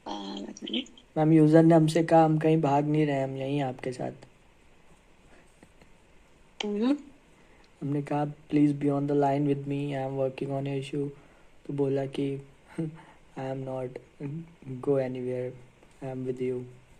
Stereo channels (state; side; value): identical; both; correlation 1.00